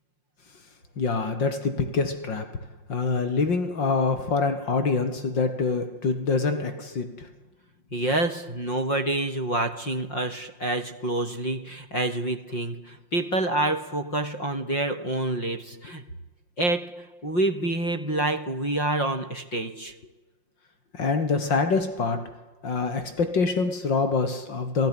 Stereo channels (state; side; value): late; right; 5.6 ms